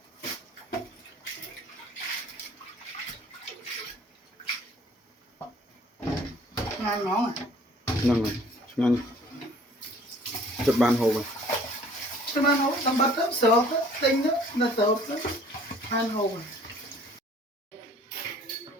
ngon ngon à ហ្នឹងហើយឆ្ងាញ់ចិត្តបានហូបហើយ cho bạn hổ tầm bát đó sợ tinh đó là sợ đó ăn hổ à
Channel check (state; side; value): normal; both; correlation 0.53